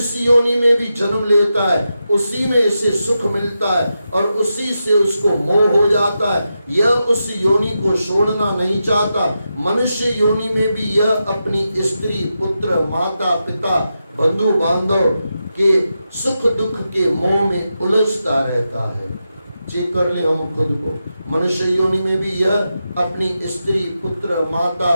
योनि में भी जन्म लेता है उसी में इसे सुख मिलता है और उसी से उसको मोह हो जाता है। यह उस योनि को छोड़ना नहीं चाहता। मनुष्य योनि में भी यह अपनी स्त्री, पुत्र, माता, पिता, बंधु बांधव के सुख दुख के मोह में उलझता रहता है। चेक कर ले हम खुद को। मनुष्य योनि में भी यह अपनी स्त्री, पुत्र, माता,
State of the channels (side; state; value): both; inverted; correlation -0.88